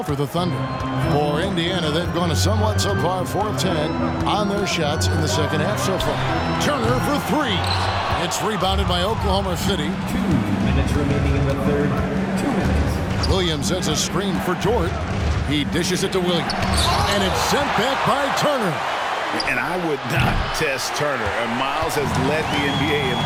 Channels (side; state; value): both; identical; correlation 1.00